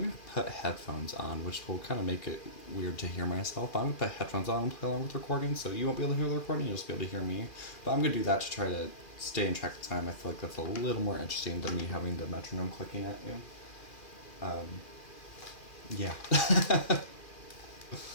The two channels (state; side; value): late; right; 2.4 ms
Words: to put headphones on, which will kind of make it weird to hear myself. But I'm going to put headphones on and play along with the recording, so you won't be able to hear the recording, you'll just be able to hear me. But I'm going to do that to try to stay in track of time. I feel like that's a little more interesting than me having the metronome clicking at you. Yeah. Let's